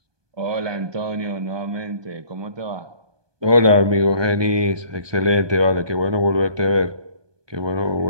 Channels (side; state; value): left; late; 1.2 ms